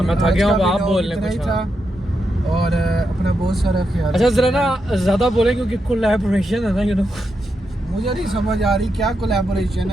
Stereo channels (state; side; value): normal; both; correlation 0.85